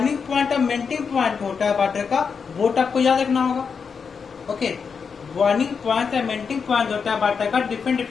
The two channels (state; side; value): quieter; right; 5.9 dB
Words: पॉइंट और मेल्टिंग पॉइंट होता है वाटर का, वो आपको याद रखना होगा। ओके, बॉइलिंग पॉइंट या मेल्टिंग पॉइंट होता है वाटर का, डिफरेंट